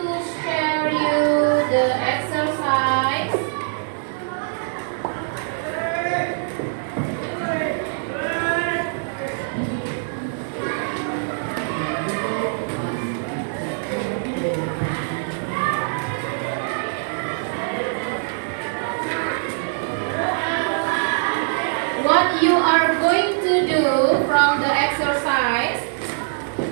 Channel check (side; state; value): left; silent; digital silence